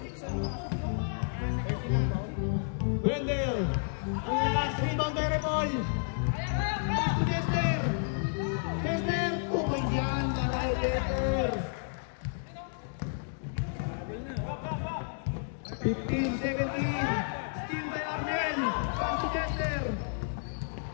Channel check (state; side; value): silent; right; digital silence